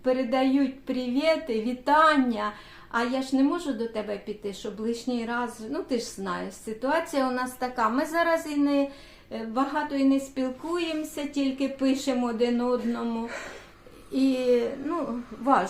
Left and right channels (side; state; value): both; identical; correlation 1.00